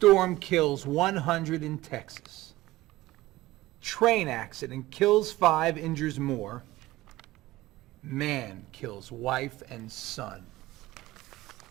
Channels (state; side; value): quieter; left; 17.7 dB